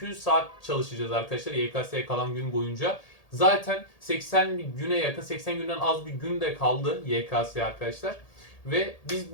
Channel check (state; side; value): late; right; 1.8 ms